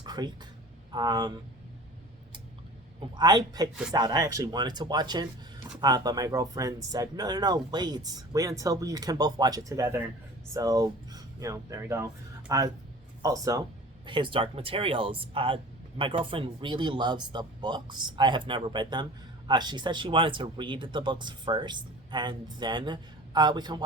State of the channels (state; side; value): normal; both; correlation 0.41